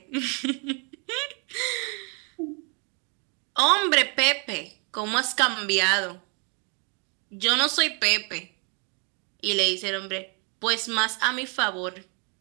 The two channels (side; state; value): left; quieter; 34.5 dB